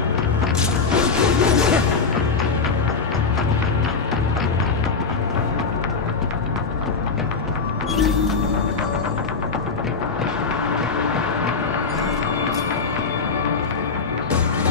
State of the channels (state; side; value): quieter; right; 4.7 dB